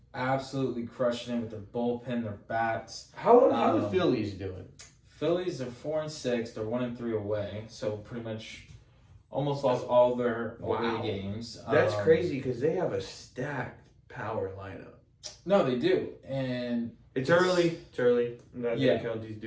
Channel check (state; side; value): identical; both; correlation 1.00